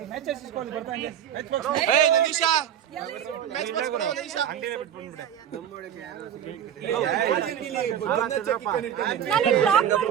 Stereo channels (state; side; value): quieter; left; 9.6 dB